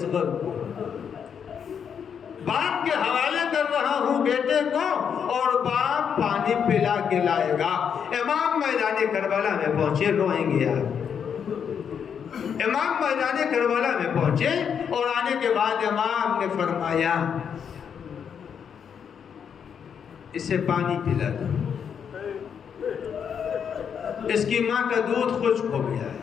کو، باپ کے حوالے کر رہا ہوں بیٹے کو، اور باپ پانی پلا کے لائے گا۔ امام میدان کربلا میں پہنچے، روئیں گے آپ، امام میدان کربلا میں پہنچے اور آنے کے بعد امام نے فرمایا اسے پانی پلا دو، اس کی ماں کا دودھ خشک ہو گیا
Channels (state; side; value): quieter; right; 7.5 dB